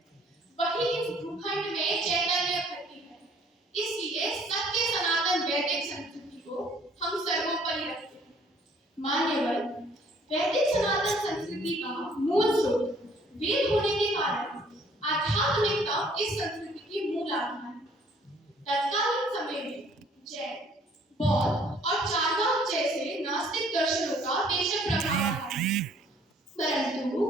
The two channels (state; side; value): normal; both; correlation 0.60